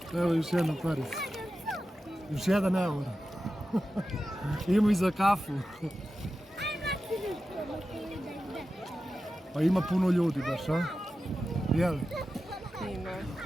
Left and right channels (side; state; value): both; normal; correlation 0.92